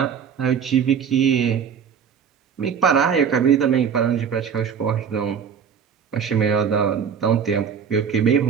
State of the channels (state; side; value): quieter; left; 7.2 dB